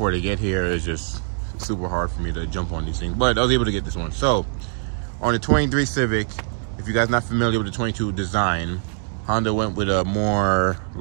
they get here is just super hard for me to jump on these things. But I was able to get this one. So, on the 23 Civic, if you guys are not familiar with the 22 design, Honda went with a more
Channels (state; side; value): silent; left; 64 dB below the other